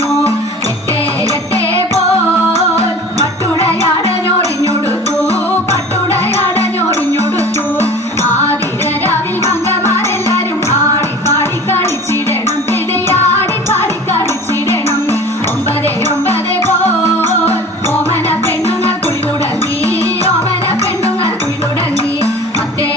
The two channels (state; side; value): normal; both; correlation 0.41